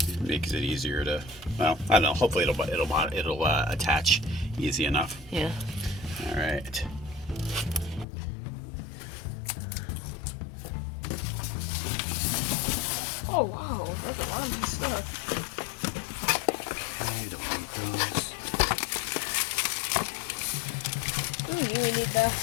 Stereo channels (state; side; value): drops out; right; at 8.1 s